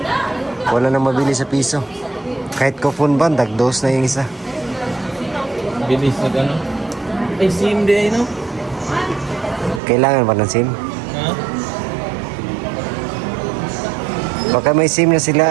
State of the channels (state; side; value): drops out; left; at 9.8 s